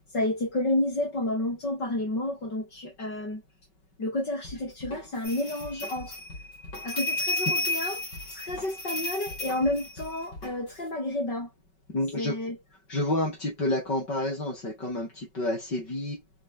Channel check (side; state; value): right; late; 5.3 ms